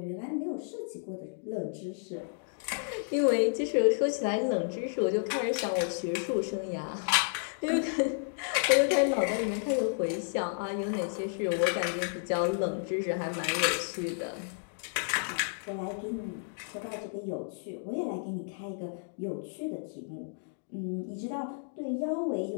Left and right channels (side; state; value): right; silent; digital silence